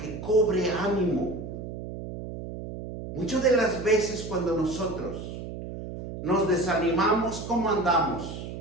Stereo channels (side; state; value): right; noise; hum, 9 dB below the sound